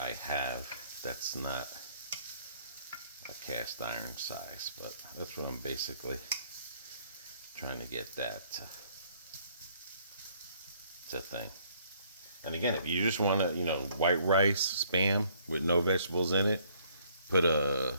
have that's not a cast iron size, but that's what I'm basically trying to get that to thing. And again, if you just want to, white rice, Spam with no vegetables in it,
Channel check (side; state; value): both; inverted; correlation -0.64